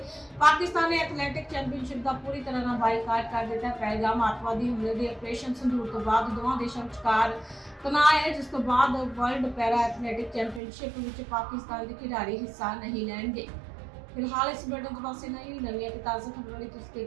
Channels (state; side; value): drops out; left; at 10.6 s